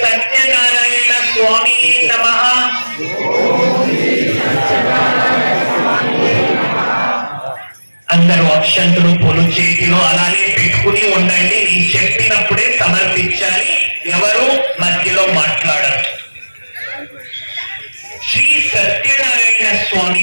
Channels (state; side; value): inverted; both; correlation -1.00